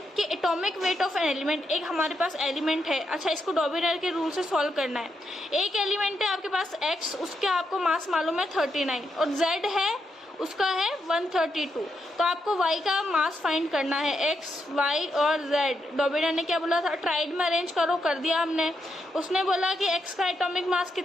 कि atomic weight of an element. एक हमारे पास एलिमेंट है, अच्छा इसको डॉबिनाइर के रूल से सॉल्व करना है। एक एलिमेंट है आपके पास X, उसके आपको मास मालूम है 39 और Z है उसका है 132, तो आपको Y का मास फाइंड करना है, X, Y और Z। डॉबिनाइर ने क्या बोला था, ट्राइड में अरेंज करो, कर दिया हमने। उसने बोला कि X का एटॉमिक मास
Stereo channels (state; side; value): normal; both; correlation 0.82